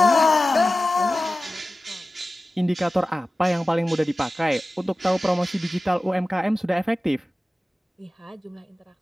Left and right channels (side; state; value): both; normal; correlation 0.95